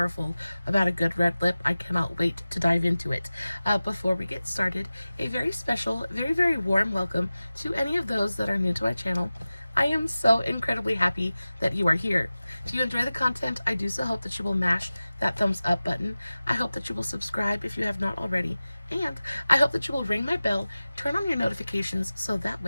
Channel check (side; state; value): both; inverted; correlation -0.96